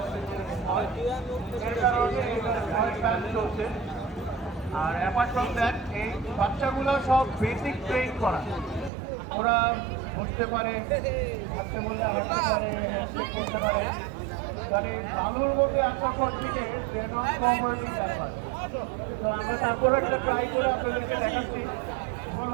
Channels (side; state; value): left; drops out; at 8.9 s